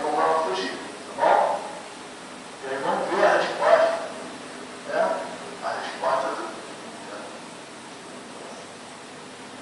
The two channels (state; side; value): identical; both; correlation 1.00